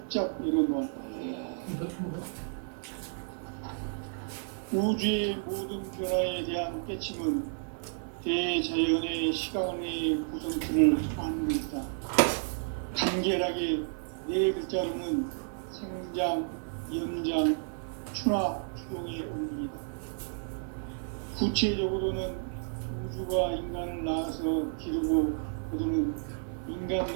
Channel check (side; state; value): left; silent; 57 dB below the other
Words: 열어놓았다. 우주의 모든 변화에 대한 깨침은 대자연의 시간의 구성틀을 아는 것이다. 간결하게 네 글자로는 생장, 연장, 추나 추동의 원리이다. 구체적으로는 우주가 인간을 낳아서 기르고 거두는 인간